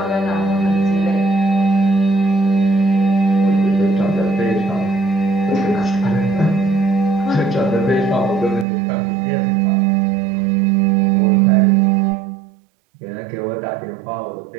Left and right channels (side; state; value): left; drops out; at 8.7 s